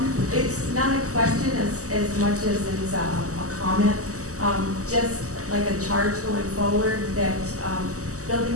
It's not a question as much as it's a comment. Just like a charge going forward that Building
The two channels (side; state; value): left; late; 0.66 ms